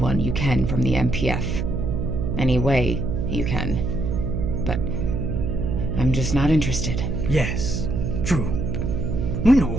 you can from the MPF. Any way you can. But I'm just not interested. Yes, true. We know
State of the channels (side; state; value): right; noise; hum, 1 dB below the sound